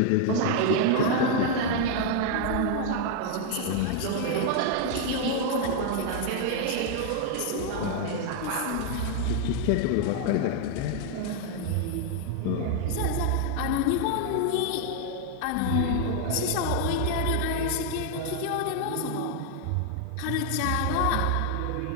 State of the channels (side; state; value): both; different; correlation 0.00